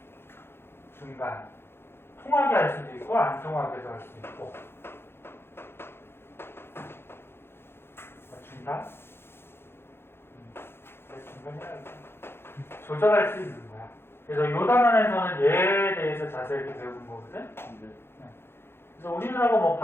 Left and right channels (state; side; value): late; right; 0.11 ms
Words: 중간. 통하게 할 수도 있고 안 통하게도 할 수도 있고. 중간? 중간이라고 조절할 수 있는 거야. 그래서 요 단원에서는 얘에 대해서 자세히 배우는 거거든. 네. 그래서 우리나라가 뭐